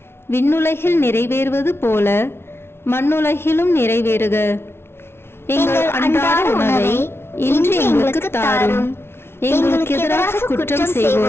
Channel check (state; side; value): late; right; 0.12 ms